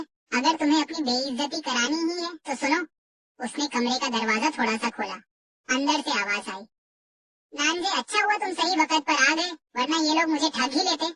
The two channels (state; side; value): identical; both; correlation 1.00